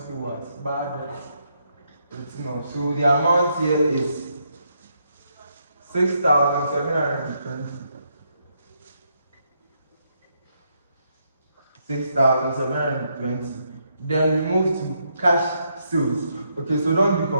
owe us. Bad debt written off. So the amount here is 6,720. 6,720. Then we move to cash sales. Okay, so don't be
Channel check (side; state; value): both; inverted; correlation -0.77